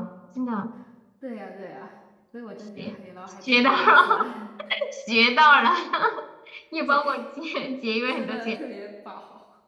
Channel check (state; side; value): identical; both; correlation 1.00